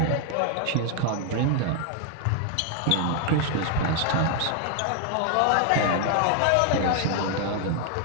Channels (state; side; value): different; both; correlation 0.00